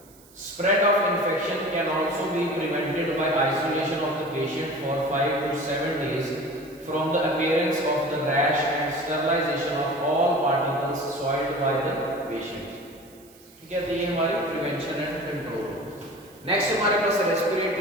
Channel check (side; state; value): right; noise; hiss, 26 dB below the sound